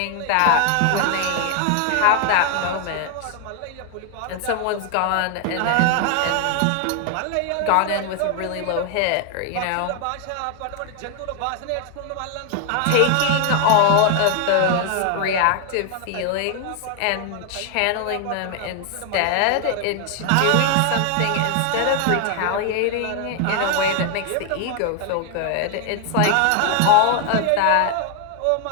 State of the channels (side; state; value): both; different; correlation 0.00